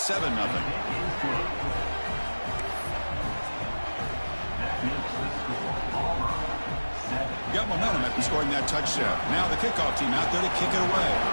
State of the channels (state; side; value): inverted; both; correlation -1.00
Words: Got momentum after scoring that touchdown. Now the kickoff team out there to kick it away.